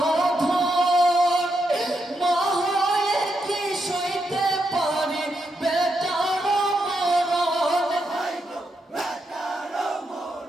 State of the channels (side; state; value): both; normal; correlation 0.82